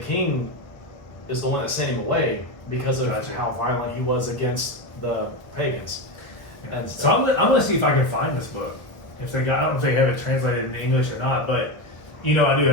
is the one that sent him away because of how violent he was against the pagans. And so I'm gonna see if I can find this book. If they got, I don't know if they have it translated in English or not, but I do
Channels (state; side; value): late; right; 1.1 ms